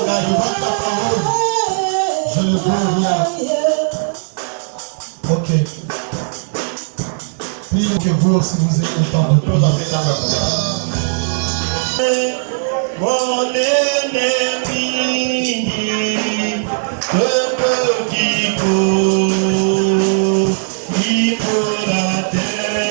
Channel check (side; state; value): left; silent; digital silence